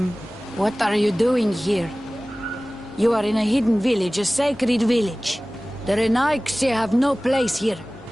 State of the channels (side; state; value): both; normal; correlation 0.98